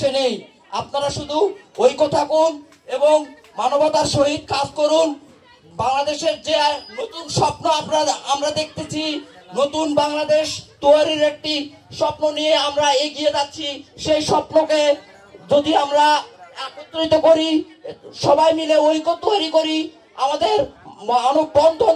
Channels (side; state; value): both; identical; correlation 1.00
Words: নেই। আপনারা শুধু ঐক্য থাকুন এবং মানবতার সহিত কাজ করুন। বাংলাদেশের যে নতুন স্বপ্ন আমরা দেখতেছি, নতুন বাংলাদেশ তৈরির একটি স্বপ্ন নিয়ে আমরা এগিয়ে যাচ্ছি। সেই স্বপ্নকে যদি আমরা একত্রিত করি, সবাই মিলে ঐক্য তৈরি করি, আমাদের মানববন্ধন